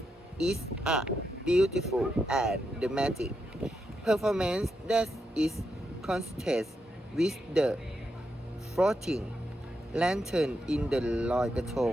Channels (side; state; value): both; normal; correlation 0.84